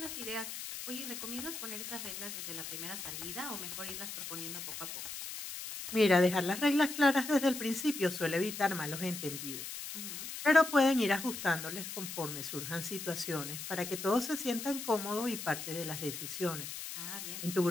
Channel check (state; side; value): noise; left; hiss, 7 dB below the sound